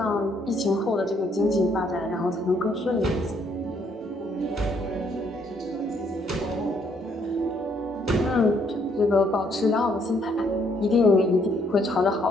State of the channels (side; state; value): both; normal; correlation 0.70